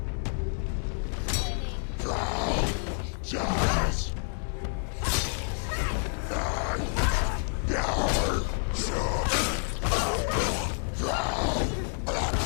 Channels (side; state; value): right; silent; 59 dB below the other